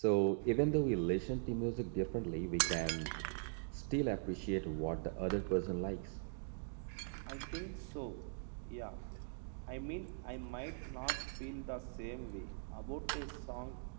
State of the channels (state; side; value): silent; left; digital silence